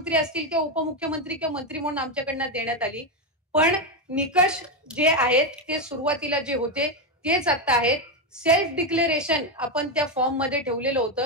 असतील किंवा उपमुख्यमंत्री किंवा मंत्री म्हणून आमच्याकडनं देण्यात आली. पण निकष जे आहेत ते सुरुवातीला जे होते तेच आता आहेत. सेल्फ डिक्लेरेशन आपण त्या फॉर्म मध्ये ठेवलेलं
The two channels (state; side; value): normal; both; correlation 0.08